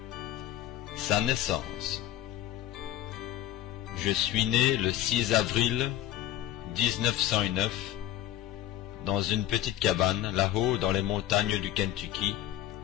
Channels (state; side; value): quieter; right; 13.0 dB